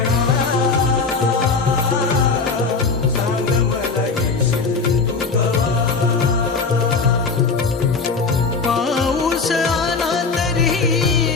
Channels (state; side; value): quieter; right; 4.5 dB